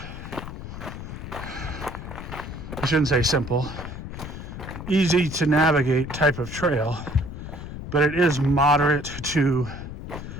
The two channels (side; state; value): left; noise; rumble, 9 dB below the sound